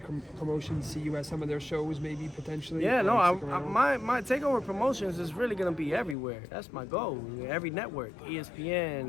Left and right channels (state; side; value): drops out; right; at 6.2 s